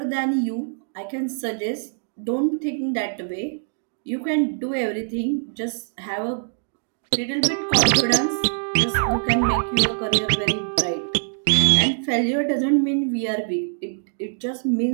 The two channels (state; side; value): silent; left; digital silence